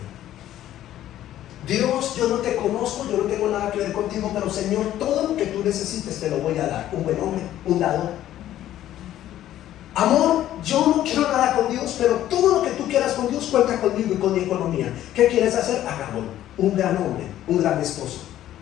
Dios, yo no te conozco, yo no tengo nada que ver contigo, pero Señor, todo lo que tú necesites te lo voy a dar. Un buen hombre, un dador. Amor, yo no quiero nada con Dios, pero todo lo que tú quieras con Dios cuenta conmigo y con mi economía. ¿Qué quieres hacer? Hagámoslo. Un gran hombre, un gran esposo.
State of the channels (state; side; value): quieter; right; 12.7 dB